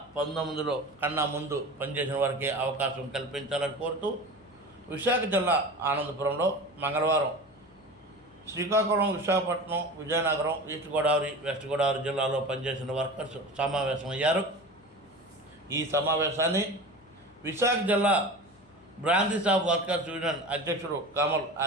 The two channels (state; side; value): noise; left; hum, 30 dB below the sound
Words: కన్నా ముందు పనిచేసిన వారికి అవకాశం కల్పించాలని కోరుతూ విశాఖ జిల్లా ఆనందపురంలో మంగళవారం శ్రీకాకుళం, విశాఖపట్నం, విజయనగరం, ఈస్ట్ గోదావరి, వెస్ట్ గోదావరి జిల్లాలో పనిచేసిన వర్కర్స్ సమావేశమయ్యారు. ఈ సమావేశాన్ని విశాఖ జిల్లా బ్రాందీ షాప్ వర్కర్స్ యూనియన్ అధ్యక్షుడు కమల్